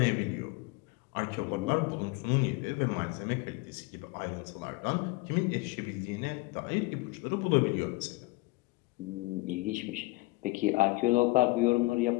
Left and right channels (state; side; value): quieter; right; 22.9 dB